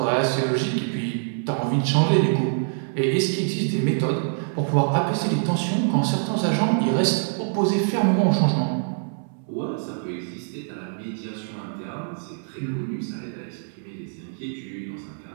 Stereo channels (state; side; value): silent; left; 62 dB below the other